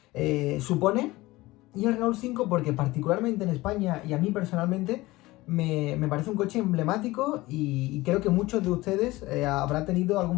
supone. Y el Renault 5 porque particularmente en España y a mí personalmente me parece un coche emblemático y creo que muchos de ustedes habrán tenido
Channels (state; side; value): quieter; right; 19.6 dB